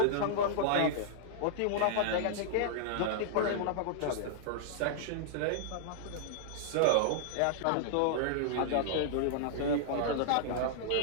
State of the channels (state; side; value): different; both; correlation -0.02